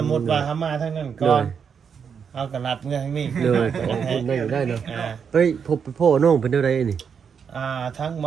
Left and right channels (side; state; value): left; quieter; 6.8 dB